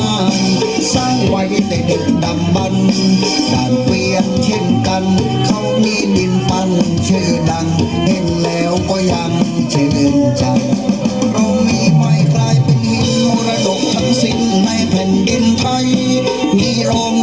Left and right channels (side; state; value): right; noise; hum, 25 dB below the sound